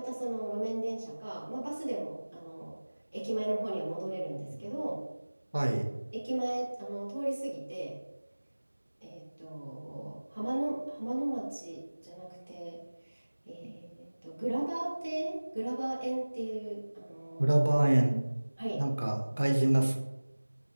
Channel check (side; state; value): both; inverted; correlation -1.00